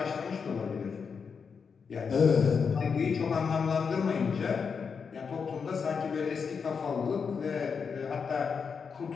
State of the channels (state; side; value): quieter; right; 5.9 dB